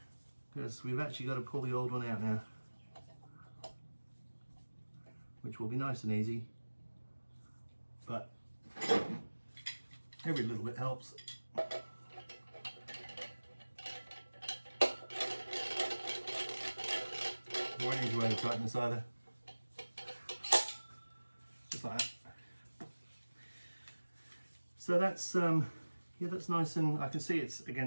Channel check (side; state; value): both; inverted; correlation -1.00